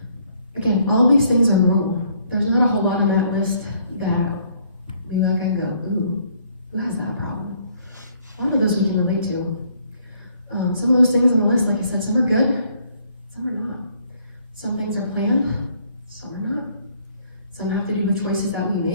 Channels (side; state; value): both; inverted; correlation -0.65